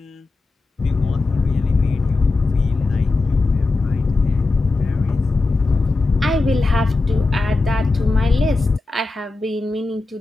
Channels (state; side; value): quieter; right; 3.4 dB